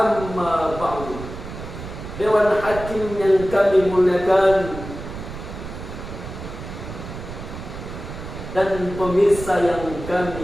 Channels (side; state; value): right; noise; rumble, 10 dB below the sound